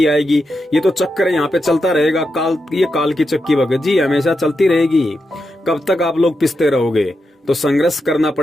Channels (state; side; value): normal; both; correlation 0.86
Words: आएगी। ये तो चक्कर यहाँ पे चलता रहेगा। ये काल की चक्की भगत जी हमेशा चलती रहेगी। कब तक आप लोग पिसते रहोगे? तो संघर्ष करना